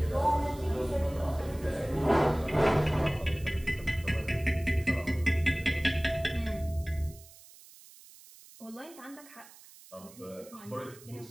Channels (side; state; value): right; noise; hiss, 21 dB below the sound